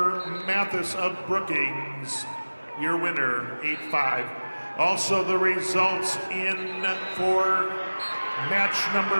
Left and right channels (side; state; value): both; inverted; correlation -1.00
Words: Mathis of Brookings. Your winner, 8-5. Also the results in for match